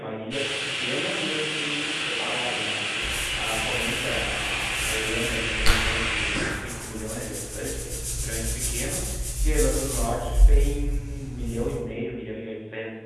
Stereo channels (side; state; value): both; identical; correlation 1.00